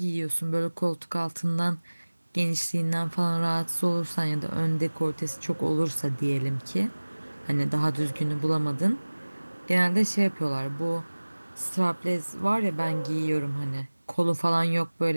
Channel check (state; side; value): inverted; both; correlation -1.00